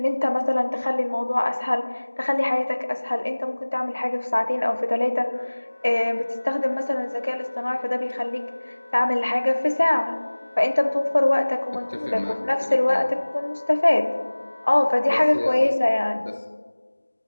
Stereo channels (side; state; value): both; inverted; correlation -1.00